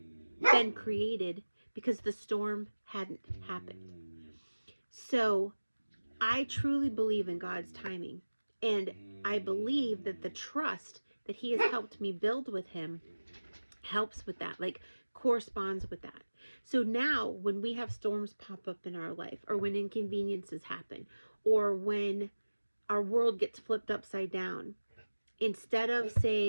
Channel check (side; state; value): both; inverted; correlation -1.00